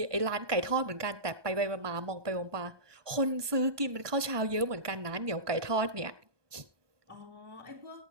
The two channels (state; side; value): late; left; 1.2 ms